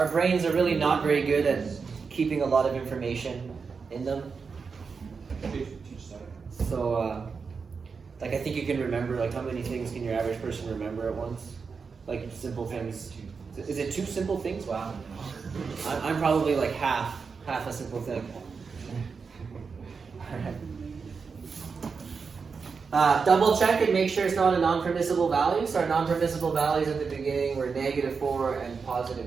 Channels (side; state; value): left; quieter; 5.3 dB